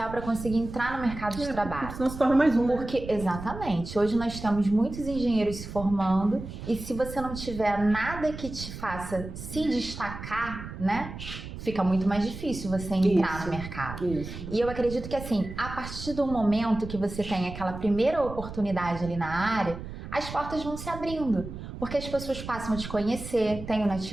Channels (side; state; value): right; noise; rumble, 10 dB below the sound